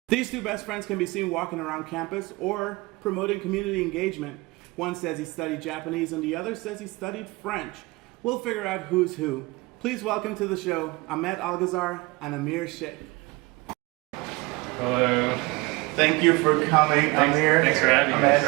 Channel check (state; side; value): quieter; left; 24.0 dB